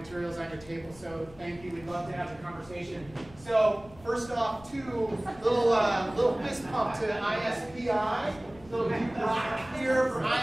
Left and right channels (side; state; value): left; noise; rumble, 21 dB below the sound